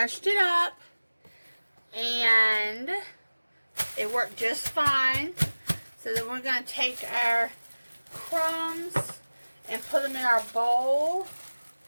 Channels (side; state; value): both; inverted; correlation -1.00